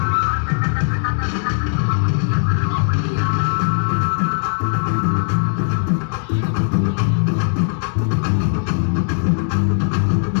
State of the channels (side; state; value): right; silent; 67 dB below the other